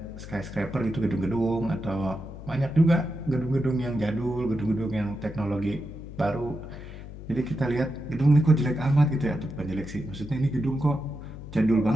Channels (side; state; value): left; noise; hum, 13 dB below the sound